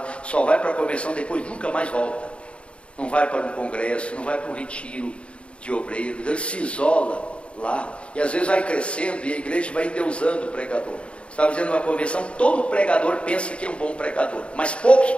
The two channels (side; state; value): right; late; 0.059 ms